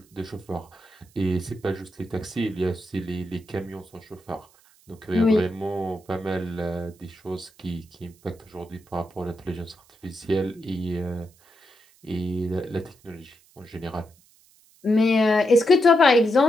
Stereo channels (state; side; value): noise; right; hiss, 30 dB below the sound